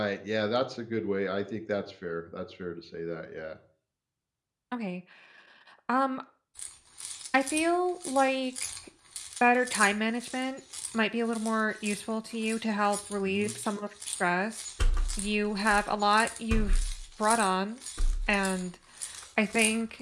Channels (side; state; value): both; identical; correlation 1.00